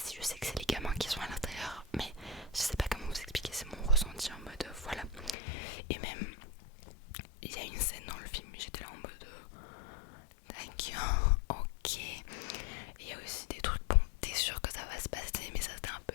si je sais que c'est les gamins qui sont à l'intérieur. Mais je sais pas comment vous expliquer, c'est mon ressenti en mode voilà. Et même, il y a une scène dans le film, j'étais là en mode d'accord, ok. Il y a aussi des trucs, bon, t'es sûr que ça va se passer, mais ça c'est un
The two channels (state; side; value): drops out; right; at 5.4 s